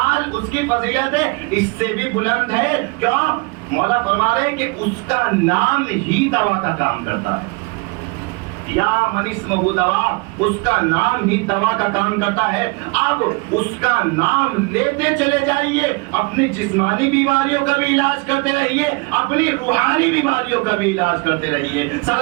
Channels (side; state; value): left; quieter; 28.4 dB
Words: اس کی فضیلت اس سے بھی بلند ہے. کیوں؟ مولا فرما رہے ہیں کہ اس کا نام ہی دوا کا کام کرتا ہے. یا من اسمہ دوا، اس کا نام ہی دوا کا کام کرتا ہے. اب اس کا نام لیتے چلے جائیے، اپنی جسمانی بیماریوں کا بھی علاج کرتے رہیے، اپنی روحانی بیماریوں کا بھی علاج کرتے رہیے.